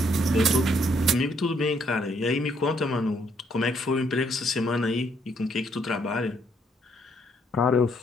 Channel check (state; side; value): normal; both; correlation 0.70